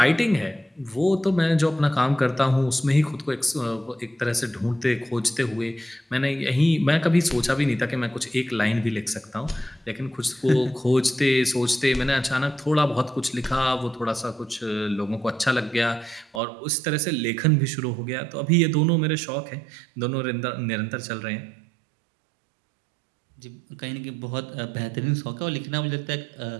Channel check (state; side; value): drops out; left; at 16.4 s